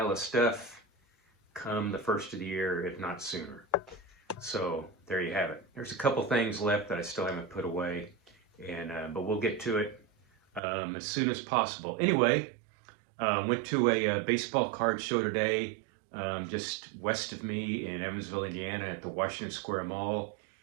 of stuff come the first of the year, if not sooner. So there you have it. There's a couple things left that I still haven't put away, and but we'll get to it as soon as possible. Anyway, went to a baseball card show today, just west of me in Evansville, Indiana, at the Washington Square Mall,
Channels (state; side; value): drops out; left; at 10.6 s